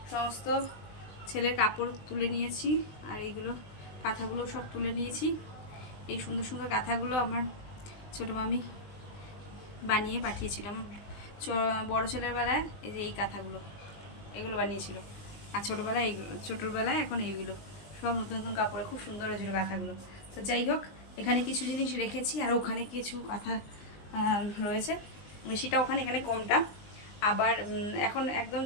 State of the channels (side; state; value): right; late; 20 ms